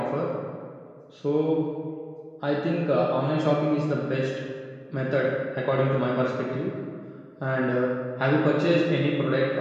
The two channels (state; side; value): identical; both; correlation 1.00